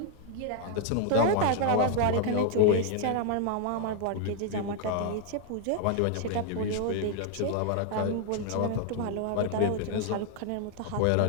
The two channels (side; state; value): both; different; correlation 0.00